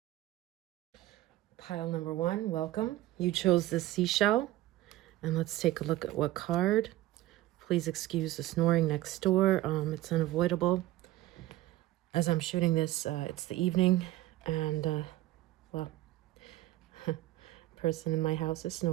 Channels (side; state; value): left; quieter; 15.6 dB